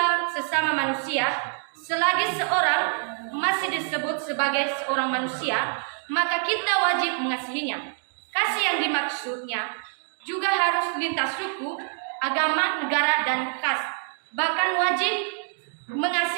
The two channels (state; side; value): silent; left; 58 dB below the other